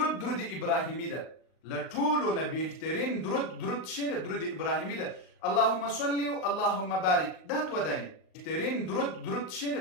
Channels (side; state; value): right; late; 38 ms